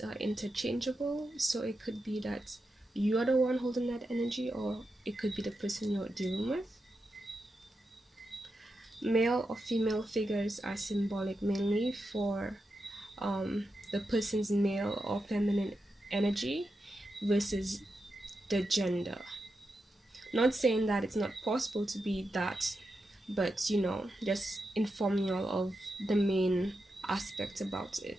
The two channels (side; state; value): both; normal; correlation 0.88